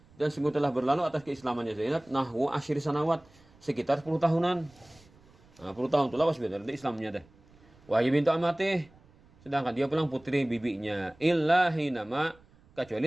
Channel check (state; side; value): noise; right; rumble, 28 dB below the sound